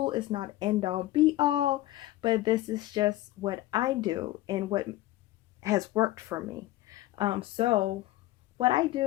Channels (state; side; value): quieter; right; 16.3 dB